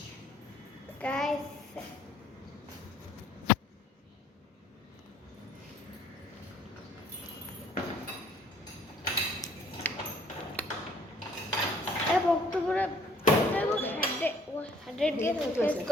গাইস এই বক্তব্যৰে 100 কে টেষ্ট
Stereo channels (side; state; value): both; normal; correlation 0.59